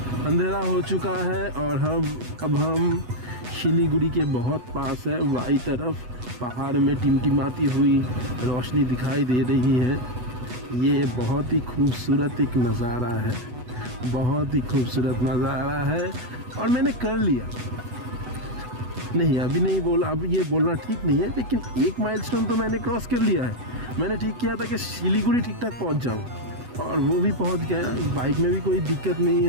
अंधेरा हो चुका है और अब हम शिलीगुड़ी के बहुत पास है। बाई तरफ पहाड़ में टिमटिमाती हुई रोशनी दिखाई दे रही है। ये बहुत ही खूबसूरत एक नज़ारा है, बहुत ही खूबसूरत नज़ारा है। और मैंने कर लिया, नहीं अभी नहीं बोला, अब ये बोलना ठीक नहीं है, लेकिन एक माइलस्टोन तो मैंने क्रॉस कर लिया है। मैंने ठीक किया था कि शिलीगुड़ी ठीक ठाक पहुंच जाऊं, और वो भी पहुंच गया। बाइक में भी कोई दिक्कत नहीं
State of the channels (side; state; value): left; late; 8.1 ms